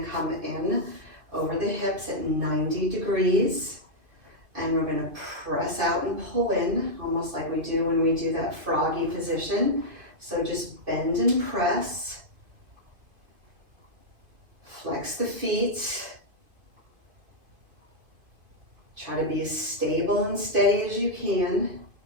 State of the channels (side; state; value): left; late; 2.5 ms